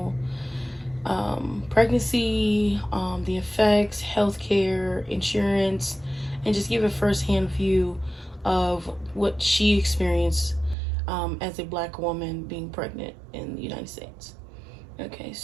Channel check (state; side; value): drops out; left; at 10.8 s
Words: pregnancy, the effects, healthcare, insurance, and just give a firsthand view of what she experienced as a black woman being pregnant in the United States. Okay,